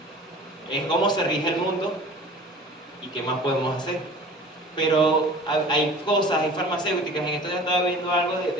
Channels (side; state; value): both; normal; correlation 0.43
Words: Es cómo se rige el mundo y qué más podemos hacer. Pero hay cosas, hay farmacéuticas. En esto ya estaba viendo algo